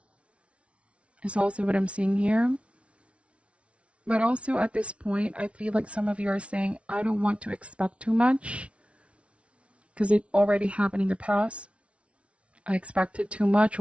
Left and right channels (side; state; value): left; late; 0.061 ms